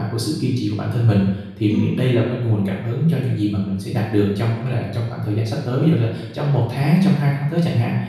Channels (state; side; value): identical; both; correlation 1.00